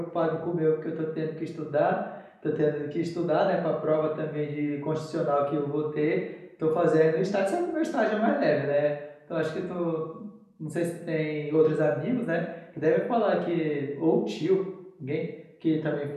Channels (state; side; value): identical; both; correlation 1.00